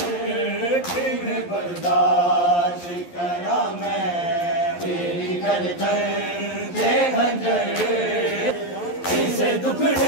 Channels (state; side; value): late; right; 11 ms